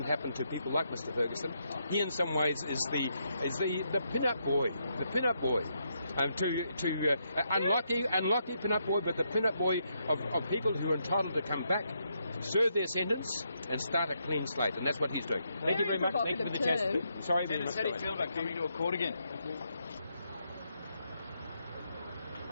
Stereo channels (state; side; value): inverted; both; correlation -0.79